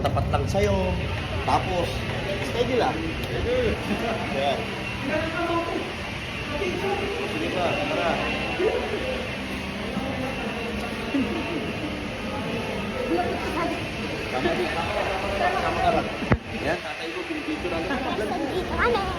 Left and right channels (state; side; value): identical; both; correlation 1.00